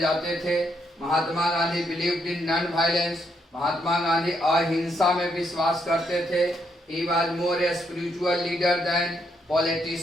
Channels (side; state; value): both; normal; correlation 0.76